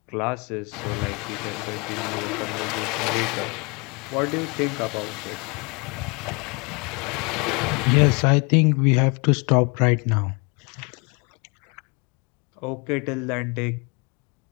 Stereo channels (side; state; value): right; quieter; 30.5 dB